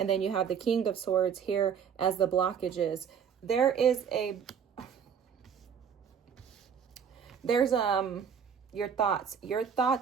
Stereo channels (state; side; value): quieter; left; 7.4 dB